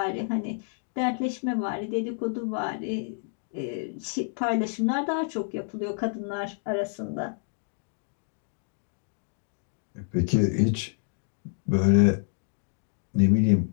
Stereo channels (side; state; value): right; silent; digital silence